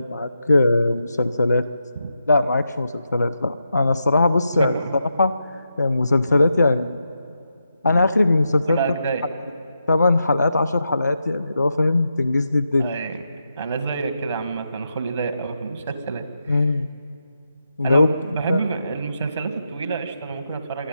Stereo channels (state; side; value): inverted; both; correlation -0.85